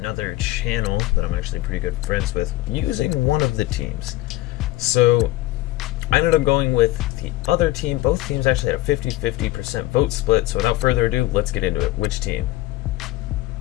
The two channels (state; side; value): quieter; right; 17.0 dB